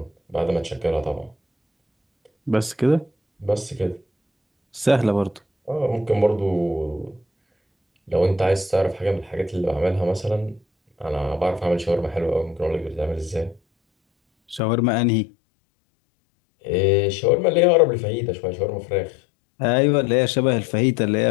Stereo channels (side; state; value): right; drops out; at 14.6 s